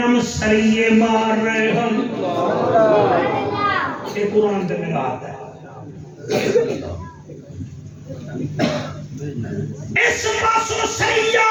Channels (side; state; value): both; identical; correlation 1.00